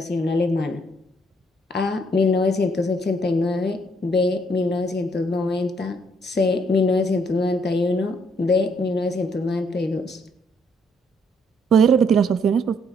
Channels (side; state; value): both; normal; correlation 0.68